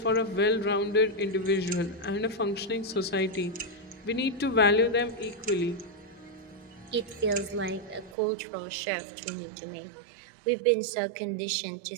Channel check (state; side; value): drops out; left; at 8.2 s